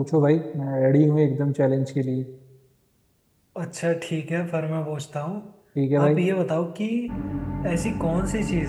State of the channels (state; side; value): identical; both; correlation 1.00